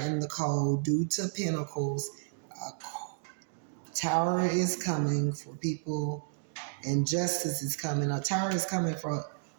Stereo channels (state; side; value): silent; left; digital silence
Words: in the cold due to pentacles. A tower is coming for people and justice is coming. A tower is coming